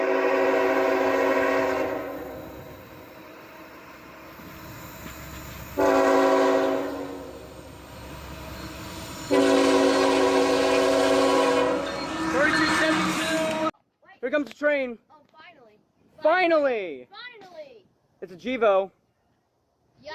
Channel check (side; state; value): both; identical; correlation 1.00